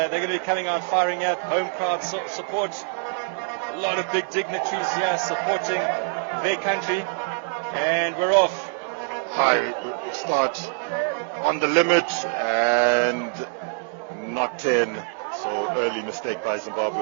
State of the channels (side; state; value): left; silent; digital silence